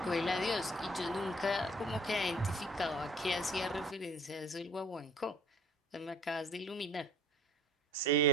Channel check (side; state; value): both; normal; correlation 0.51